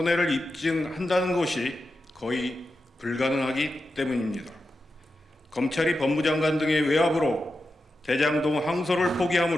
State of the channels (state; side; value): normal; both; correlation 0.90